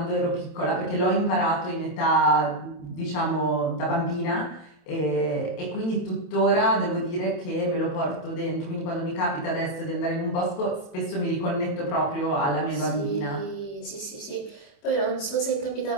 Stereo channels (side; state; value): right; late; 28 ms